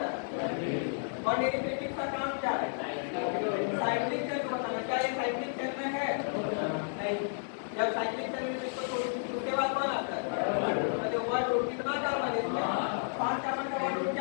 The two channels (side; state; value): right; silent; digital silence